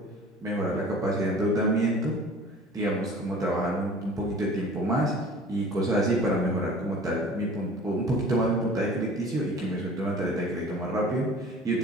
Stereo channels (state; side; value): normal; both; correlation 0.45